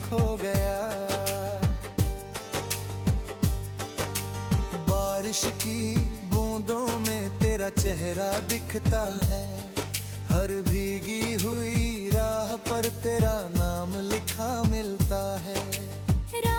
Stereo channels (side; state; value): both; identical; correlation 1.00